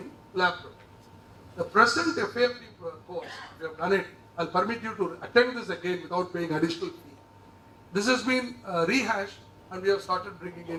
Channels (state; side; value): identical; both; correlation 1.00